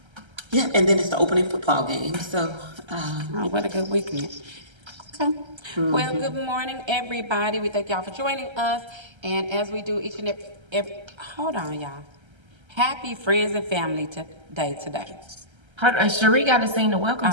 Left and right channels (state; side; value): late; left; 1.3 ms